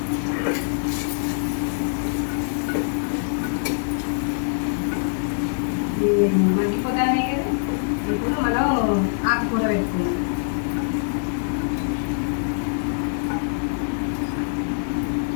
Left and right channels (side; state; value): right; silent; 63 dB below the other